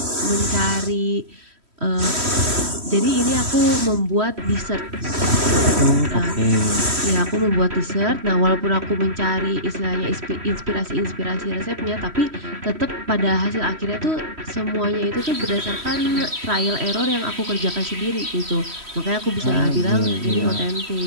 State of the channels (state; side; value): late; left; 3.1 ms